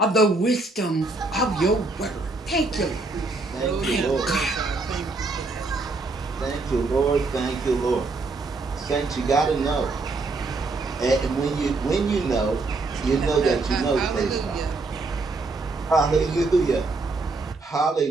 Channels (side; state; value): left; quieter; 3.5 dB